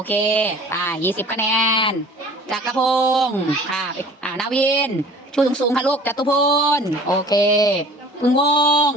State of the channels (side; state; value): both; normal; correlation 0.47